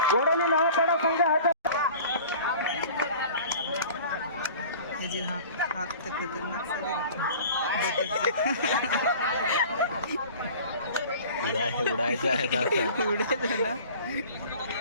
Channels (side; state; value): both; inverted; correlation -0.43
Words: वडोली नवपाडा संघ हजर. उडायचं आहे